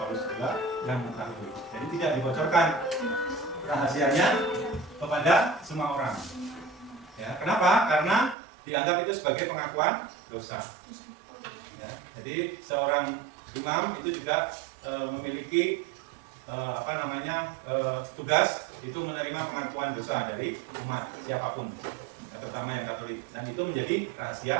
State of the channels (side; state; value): left; drops out; at 8.3 s